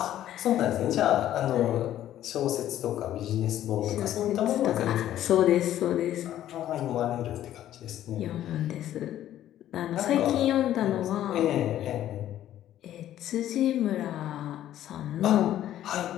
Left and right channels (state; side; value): quieter; right; 12.3 dB